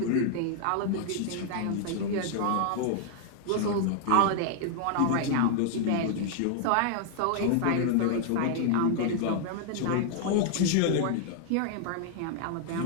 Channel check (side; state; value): both; different; correlation 0.00